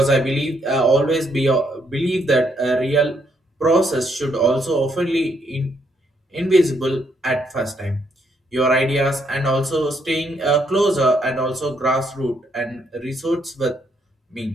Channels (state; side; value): normal; both; correlation 0.73